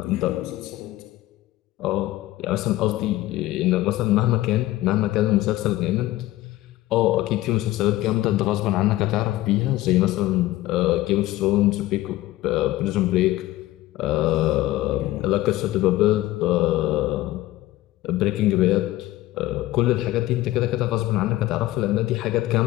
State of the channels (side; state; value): right; quieter; 16.6 dB